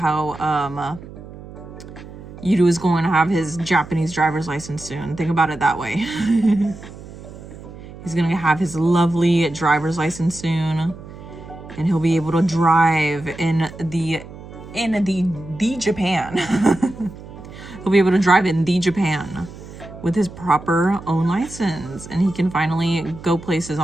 Yudu is going to have his Japanese driver's license soon. Think about it that way. He's gonna have his lovely driver's license soon, and he'll be able to drive in the Japan. He'll be able to drive in the Japan with his proper own license, and he can finally go places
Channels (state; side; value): noise; right; hum, 15 dB below the sound